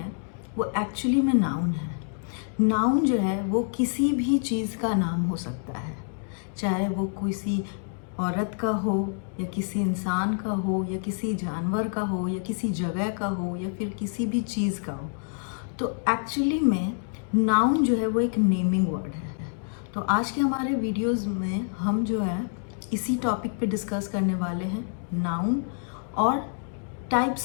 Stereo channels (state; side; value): silent; right; 57 dB below the other